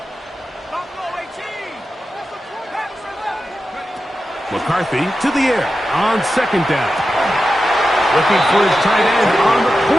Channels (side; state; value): both; normal; correlation 0.91